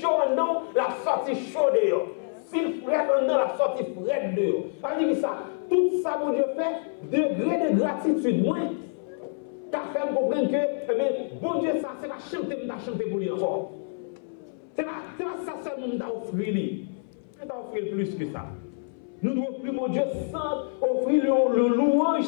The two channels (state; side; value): silent; right; 59 dB below the other